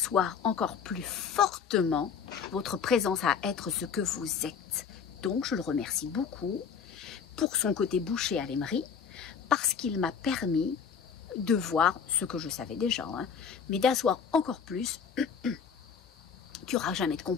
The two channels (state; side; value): quieter; right; 6.7 dB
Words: encore plus fortement votre présence à être ce que vous êtes. Donc, je le remercie beaucoup pour son côté bouché à l'émery, parce qu'il m'a permis de voir ce que je savais déjà, hein, mais d'asseoir encore plus qu'il n'y aura jamais de